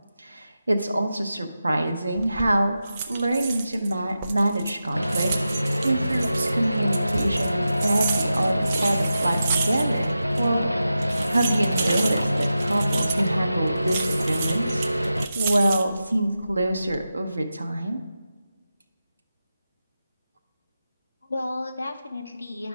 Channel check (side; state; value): both; inverted; correlation -0.91